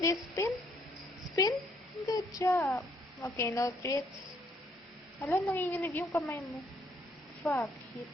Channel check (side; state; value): both; normal; correlation 0.68